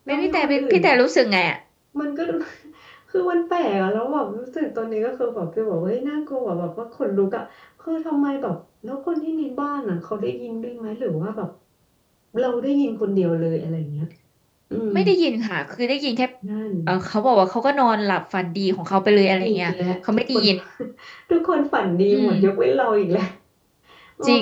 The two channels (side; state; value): both; identical; correlation 1.00